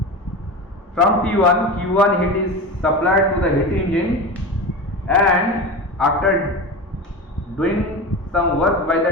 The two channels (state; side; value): normal; both; correlation 0.26